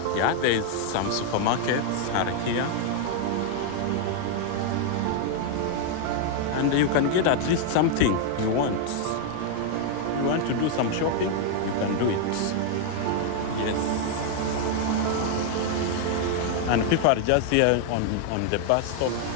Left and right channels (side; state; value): both; different; correlation 0.00